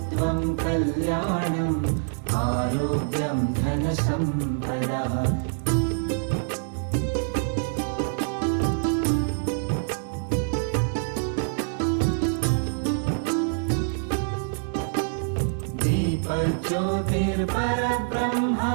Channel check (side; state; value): left; silent; digital silence